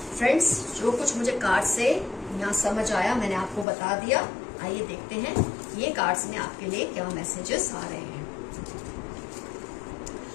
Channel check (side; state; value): right; drops out; at 3.7 s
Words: फ्रेंड्स, जो कुछ मुझे कार्ड से यहाँ समझ आया मैंने आपको बता दिया। आइए देखते हैं ये कार्ड्स में आपके लिए क्या मैसेजेस आ रहे हैं।